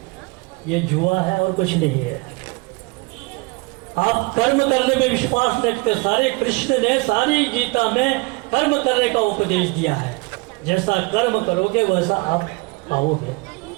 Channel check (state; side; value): quieter; left; 27.1 dB